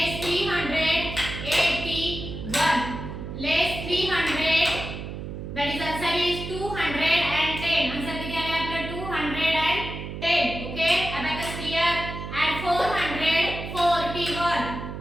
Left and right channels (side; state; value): right; noise; hum, 8 dB below the sound